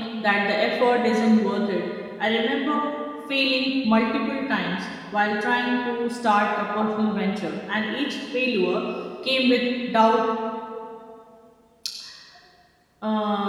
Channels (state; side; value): identical; both; correlation 1.00